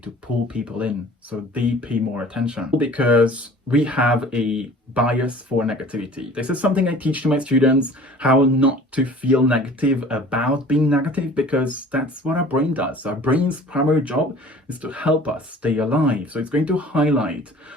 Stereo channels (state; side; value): normal; both; correlation 0.47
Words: pull people in, so they pay more attention. Because we have a bias for negativity. This is something I teach to my students, how not to feel negative about being negative, because that's what our brain does. Our brain's primary job is to help us stay alive. So it's going to highlight